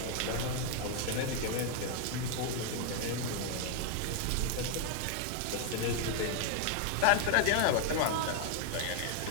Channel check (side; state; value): both; different; correlation 0.00